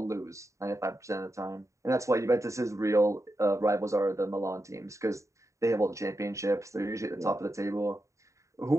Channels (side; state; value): left; late; 0.15 ms